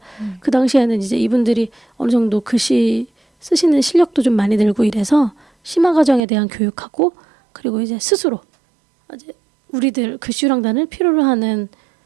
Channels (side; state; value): left; drops out; at 6.2 s